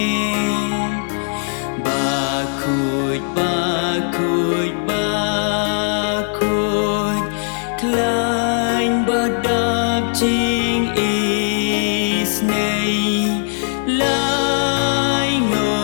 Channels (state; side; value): silent; right; digital silence